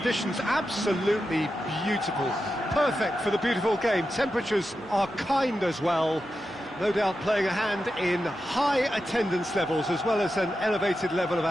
absolutely beautiful. Perfect for the beautiful game. Temperatures are kind as well. No doubt playing a hand in high attendance levels as well as an elevated level of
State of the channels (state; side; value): noise; left; hum, 27 dB below the sound